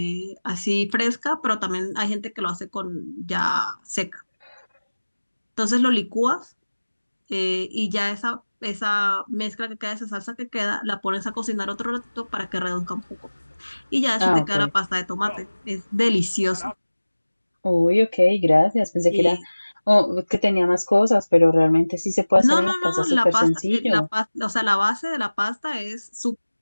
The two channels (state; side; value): inverted; both; correlation -1.00